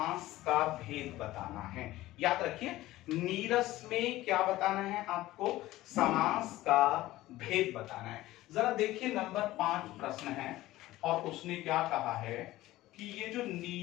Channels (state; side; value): quieter; right; 16.6 dB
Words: का भेद बताना है। याद रखिए नीरस में क्या बताना है आपको, समास का भेद बताना है। जरा देखिए नंबर 5 प्रश्न है और उसने क्या कहा है कि ये जो